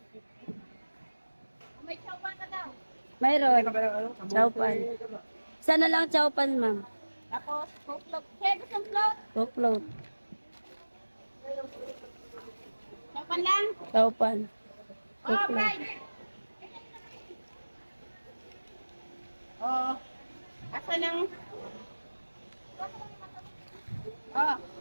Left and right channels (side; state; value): both; inverted; correlation -1.00